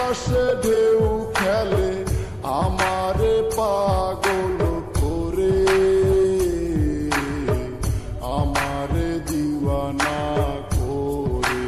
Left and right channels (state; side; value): identical; both; correlation 1.00